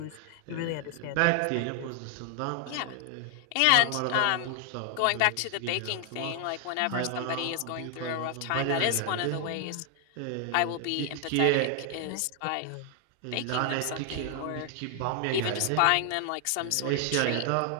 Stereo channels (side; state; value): both; different; correlation 0.00